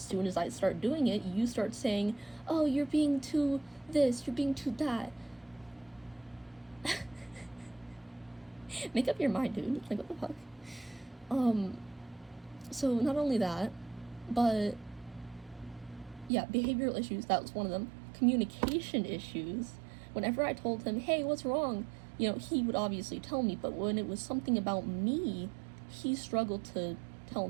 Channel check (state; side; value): drops out; left; at 16.3 s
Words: as I start doing it, you start saying, oh, you're being too this, you're being too that. Make up your mind, dude. Like, what the fuck? So not only that, but yeah, behavioral issues, that was one of them. Communication issues. Whenever I told him, hey, what's wrong? You know, he would obviously tell me, but when it was something about me, he struggled to tell